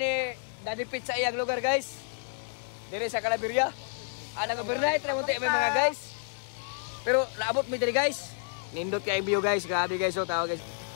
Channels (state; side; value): silent; right; digital silence